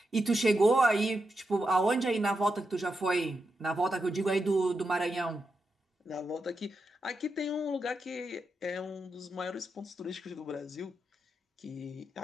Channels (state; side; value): normal; both; correlation 0.86